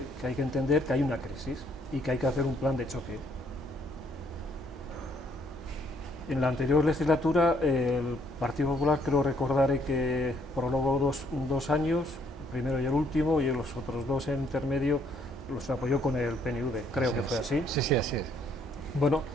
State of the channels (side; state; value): both; normal; correlation 0.67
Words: hay que entender que hay una crisis y que hay que hacer un plan de choque. En la anterior legislatura el Partido Popular, creo recordar que prorrogó dos años, el primero y el último, y los otros dos en intermedio los apoyó con el PNV, creo que fue así. Sí, así es. Bueno,